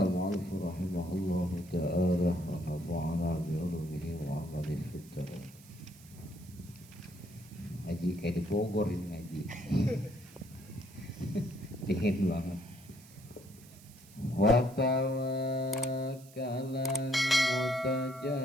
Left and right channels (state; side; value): noise; right; hiss, 22 dB below the sound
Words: رحمه الله تعالى ونفعنا بعلومه وعمله في الدارين. Ngaji kayak di Bogor ini ngaji. Dingin banget. Wa tawakkalan